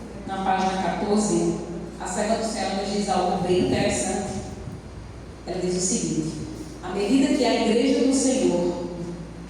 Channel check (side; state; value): both; identical; correlation 1.00